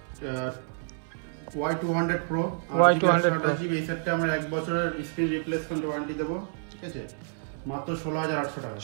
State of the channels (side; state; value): left; silent; 59 dB below the other